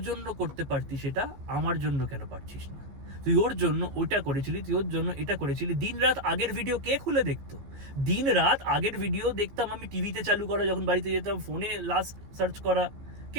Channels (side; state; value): left; late; 15 ms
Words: জন্য করতে পারতি, সেটা আমার জন্য কেন পারছিস না? তুই ওর জন্য ওটা করেছিলি, তুই ওর জন্য এটা করেছিলি। দিন রাত আগের ভিডিও কে খুলে দেখতো? দিন রাত আগের ভিডিও দেখতাম আমি, টিভিতে চালু করা, যখন বাড়িতে যেতাম ফোনে লাস্ট সার্চ করা।